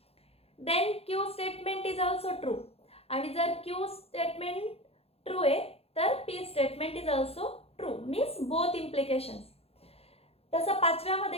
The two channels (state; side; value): late; right; 0.29 ms